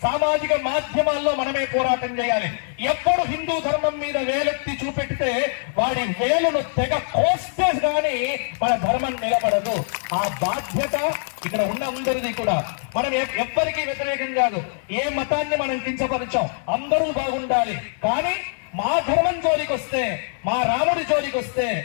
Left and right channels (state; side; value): silent; right; 63 dB below the other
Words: సామాజిక మాధ్యమాల్లో మనమే పోరాటం చేయాలి. ఎప్పుడు హిందూ ధర్మం మీద వేలెత్తి చూపెడితే వాడి వేలును తెగ కోస్తే గాని మన ధర్మం నిలబడదు. ఆ బాధ్యత ఇక్కడ ఉన్న అందరిది కూడా. మనం ఎవ్వరికీ వ్యతిరేకం కాదు, ఏ మతాన్ని మనం కించపరచాం, అందరూ బాగుండాలి. కానీ మా ధర్మం జోలికి వస్తే, మా రాముడి జోలికి వస్తే,